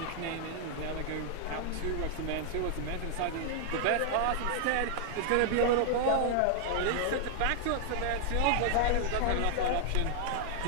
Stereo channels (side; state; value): both; different; correlation 0.00